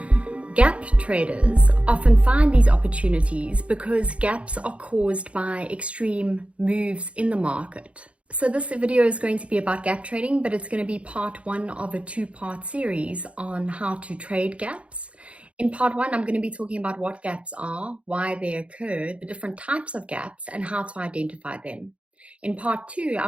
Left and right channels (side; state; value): left; late; 0.062 ms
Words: Gap traders often find these opportunities because gaps are caused by extreme moves in the market. So this video is going to be about gap trading, but it's going to be part one of a two-part series on how to trade gaps. In part one, I'm going to be talking about what gaps are, why they occur, the different types of gaps, and how to identify them. In part two,